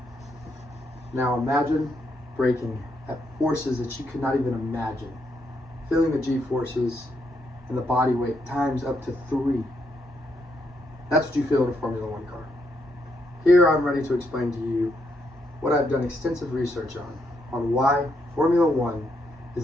Now imagine braking at forces that you could not even imagine. Feeling the G-forces and the body weight times up to 3. That's what you feel in a Formula One car. Here I'm ready to explain to you what I've done extensive research on why Formula One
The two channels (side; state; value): both; normal; correlation 0.77